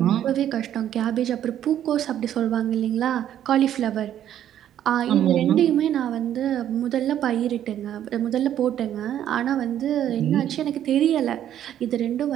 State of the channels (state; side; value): quieter; left; 10.9 dB